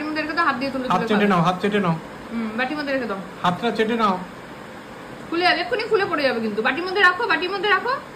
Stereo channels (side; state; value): both; identical; correlation 1.00